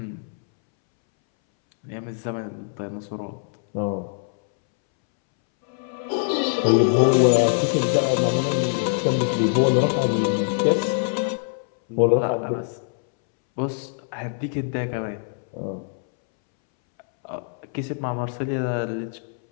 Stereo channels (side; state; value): right; silent; 63 dB below the other